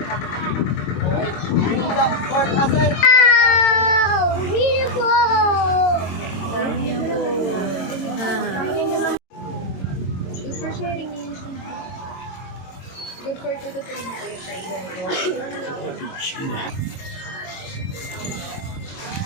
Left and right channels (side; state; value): right; late; 22 ms